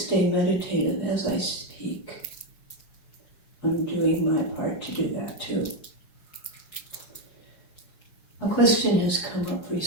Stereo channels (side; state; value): right; late; 4.7 ms